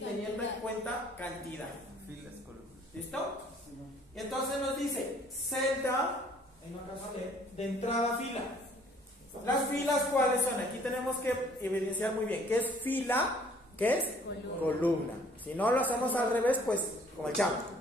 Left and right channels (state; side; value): normal; both; correlation 0.58